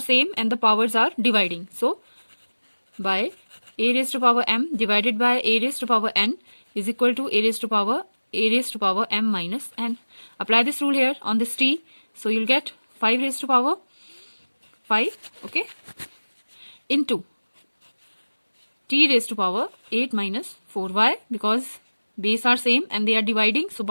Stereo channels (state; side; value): inverted; both; correlation -1.00